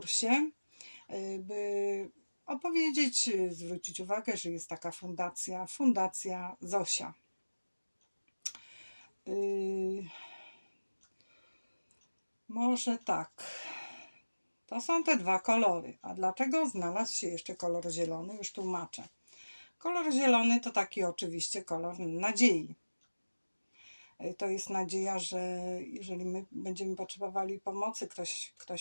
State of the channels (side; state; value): both; inverted; correlation -1.00